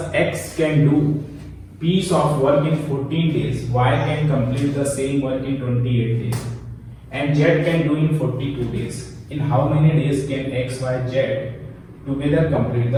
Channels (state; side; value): identical; both; correlation 1.00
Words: x can do piece of work in 14 days, y can complete the same work in 28 days, and z can do in 42 days. In how many days can x, y, z together complete